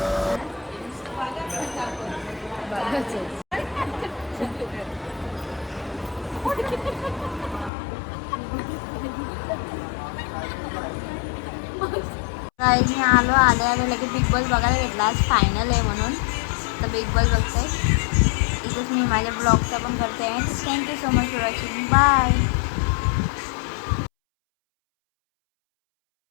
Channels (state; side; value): drops out; right; at 7.7 s